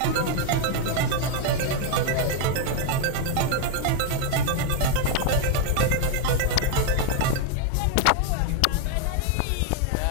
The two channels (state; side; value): different; both; correlation 0.01